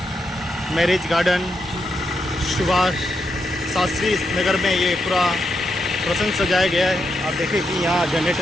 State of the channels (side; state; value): both; normal; correlation 0.83